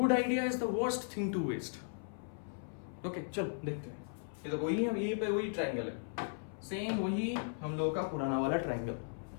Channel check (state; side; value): silent; right; 53 dB below the other